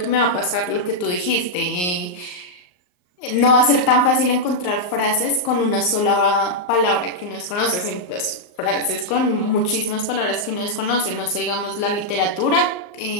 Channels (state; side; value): late; right; 39 ms